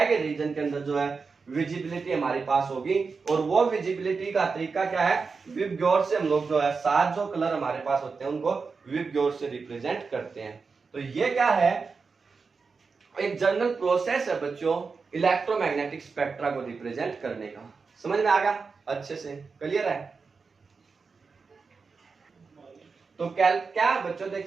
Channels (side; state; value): left; quieter; 4.8 dB